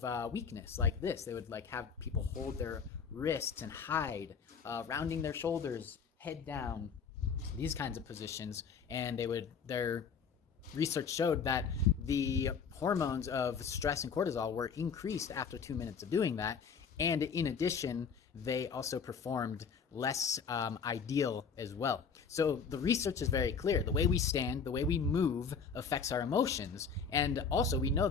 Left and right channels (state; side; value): quieter; right; 6.1 dB